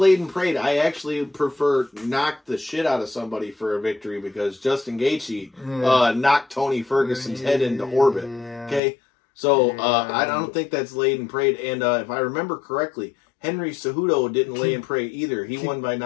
and prayed? I actually prefer knock the shit out of somebody for a victory because Justin Gaethje knocked Tony Ferguson's head into orbit. Okay, so I don't think that's laid and prayed. And if I remember correctly, Henry Cejudo didn't lay and pray either. He won by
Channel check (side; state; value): right; drops out; at 8.8 s